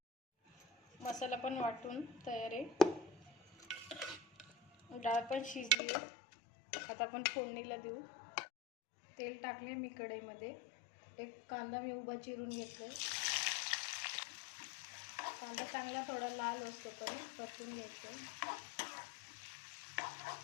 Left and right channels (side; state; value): right; drops out; at 5.8 s